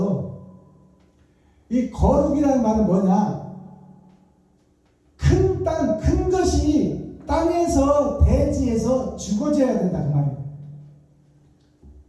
이 거룩이라는 말은 뭐냐? 큰 땅, 큰 것이 땅에서 대지에서 죽어져야 된다 그 말이에요.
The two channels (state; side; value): identical; both; correlation 1.00